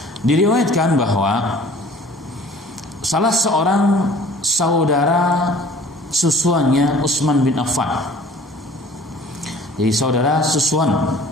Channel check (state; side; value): normal; both; correlation 0.49